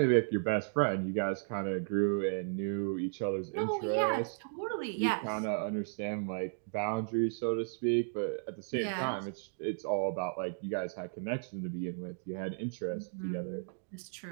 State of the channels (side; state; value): left; silent; digital silence